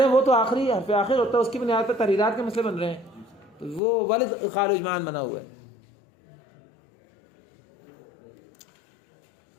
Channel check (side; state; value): right; drops out; at 3.8 s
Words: ہیں وہ تو آخری حرف آخر ہوتا ہے، اس کی بنیاد پر تحریرات کے مسئلے بن رہے ہیں. تو وہ والد ادخال اجماعاً بنا ہوا ہے.